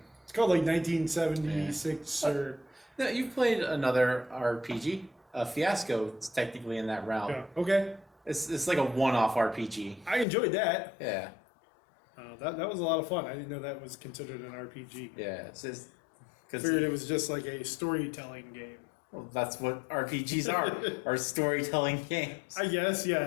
It's called 1976 or... No, you've played another RPG. Fiasco is technically in that realm. Yeah, okay. It's like a one-off RPG. I enjoyed that. Yeah. That was a lot of fun. I didn't know that was considered an RPG. Yeah, it's just... I figured it was just like a storytelling game. Well, that's what RPGs are storytelling games. I guess,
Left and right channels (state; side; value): drops out; right; at 10.2 s